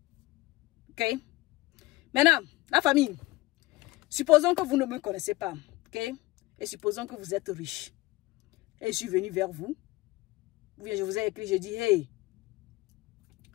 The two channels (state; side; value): quieter; right; 20.2 dB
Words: Ok? Maintenant, la famille, supposons que vous ne me connaissez pas, ok? Et supposons que vous êtes riche. Et je suis venu vers vous. Ou bien je vous ai écrit, je dis, hey,